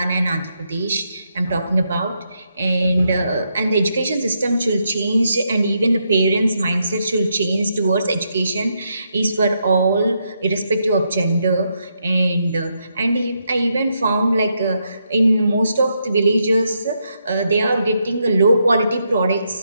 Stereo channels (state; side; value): inverted; both; correlation -0.80